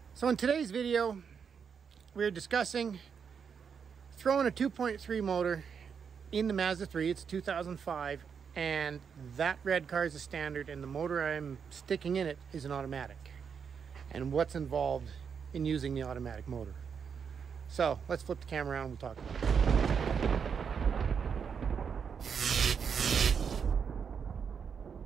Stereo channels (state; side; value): quieter; left; 6.7 dB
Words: So in today's video, we're discussing throwing a 2.3 motor in the Mazda 3. It's 2005, and that red car is a standard, and the motor I'm sticking in it is an automatic, and what's involved in using the automatic motor. So let's flip the camera around and we'll talk about it.